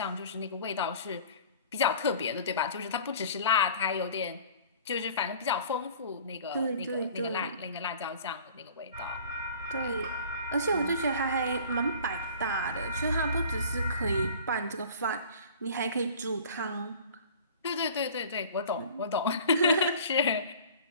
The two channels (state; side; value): inverted; both; correlation -0.46